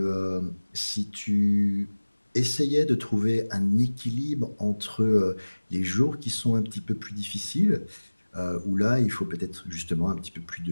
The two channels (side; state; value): both; inverted; correlation -1.00